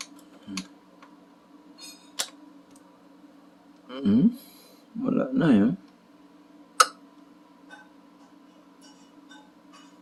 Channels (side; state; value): both; identical; correlation 1.00